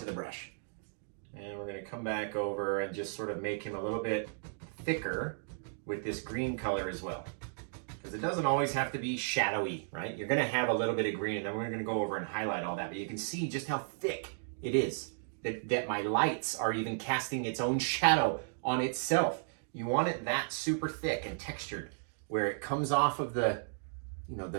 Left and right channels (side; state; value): left; silent; digital silence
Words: the brush. And we're gonna come back over and just sort of make him a little bit thicker with this green color as well. Because it doesn't always have to be shadowy, right? You're gonna have a little bit of green and then we're gonna go over and highlight all that, but you can see just how thick it is, that my lights are even casting its own shadow on itself. You want it that super thick and textured where it comes off of the, you know,